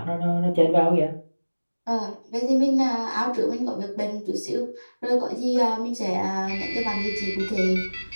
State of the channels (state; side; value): inverted; both; correlation -1.00